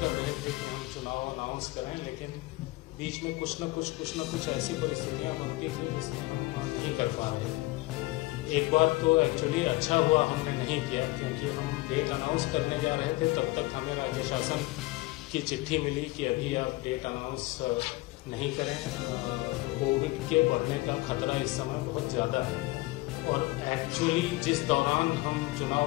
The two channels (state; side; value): quieter; right; 21.2 dB